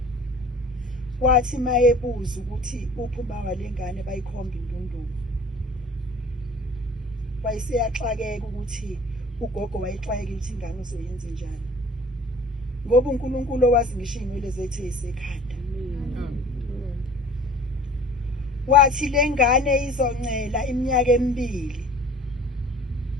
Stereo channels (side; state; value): both; normal; correlation 0.46